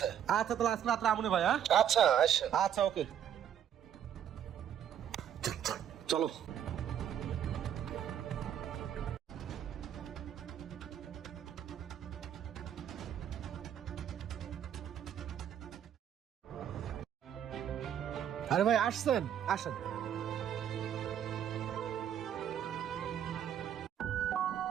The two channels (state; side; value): quieter; left; 9.7 dB